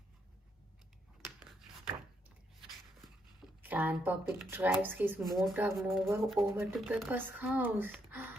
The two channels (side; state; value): both; normal; correlation 0.76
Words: Grandpa Pig drives his motor mower over to Peppa's house.